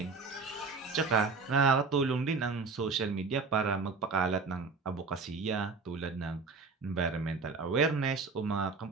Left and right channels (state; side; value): quieter; left; 4.4 dB